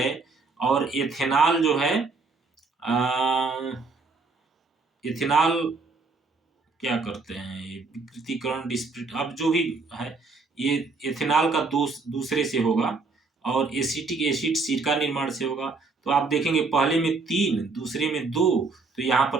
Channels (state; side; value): quieter; left; 4.0 dB